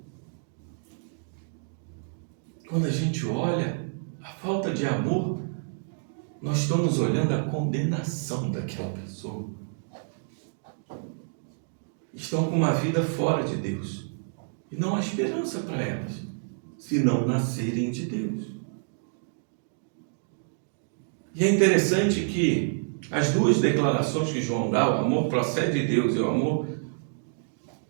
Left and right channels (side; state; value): left; silent; digital silence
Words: Quando a gente olha a falta de amor, nós estamos olhando a condenação daquela pessoa. Estão com uma vida fora de Deus. E não há esperança para elas, se não nascerem de Deus. E é interessante que as duas declarações que João dá, o amor procede de Deus e o amor